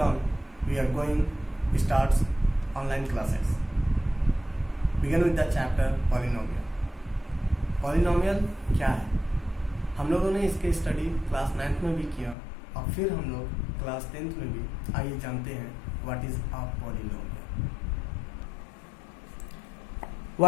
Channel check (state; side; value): drops out; right; at 12.4 s